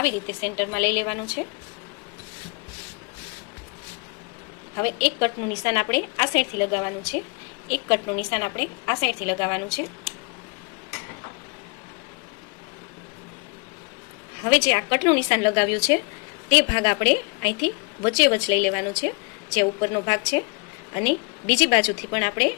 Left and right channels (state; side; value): quieter; right; 30.8 dB